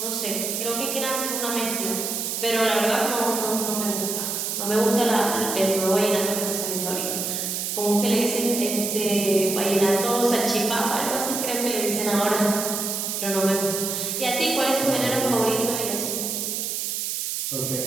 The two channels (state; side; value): noise; right; hiss, 2 dB below the sound